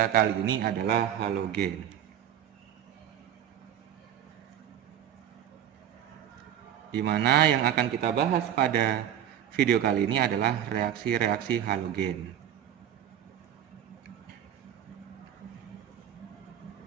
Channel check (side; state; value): left; quieter; 10.4 dB